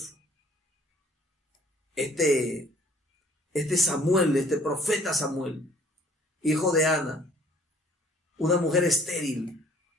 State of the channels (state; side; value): normal; both; correlation 0.57